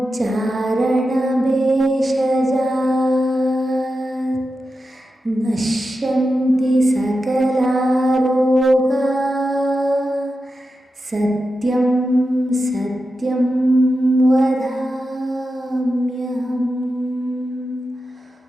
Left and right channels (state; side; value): normal; both; correlation 0.90